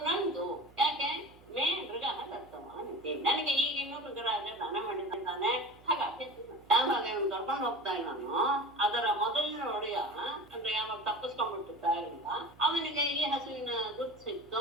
ನಂದು, ಯಾಕೆ ಮೇ ಮೃಗ ದತ್ತವಾನಿತಿ, ನನಗೆ ಈಗ ಇನ್ನೊಂದು ರಾಜ ದಾನ ಮಾಡಿದ್ದಾನೆ. ಹಾಗಾಗಿ ಯಾವಾಗ ಇವನು ಕರ್ಕೊಂಡು ಹೋಗ್ತಾ ಇದ್ದಾನೋ ಅದರ ಮೊದಲಿನ ಒಡೆಯ ಅಂದ್ರೆ ಯಾವಾಗ ತಪ್ಪಿಸ್ಕೊಂಡ್ಬಿಟ್ಟಿರ್ತಾ ಇಲ್ಲ ಅವನಿಗೆ ಈ ಹಸುವಿನ ಗುರ್ತು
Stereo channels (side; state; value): right; noise; hum, 25 dB below the sound